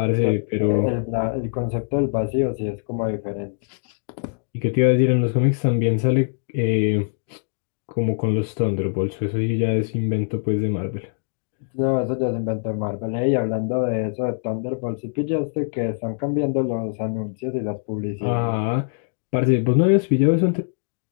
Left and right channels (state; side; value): silent; right; digital silence